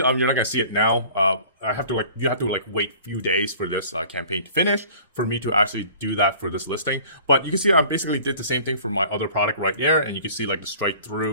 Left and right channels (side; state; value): both; inverted; correlation -0.48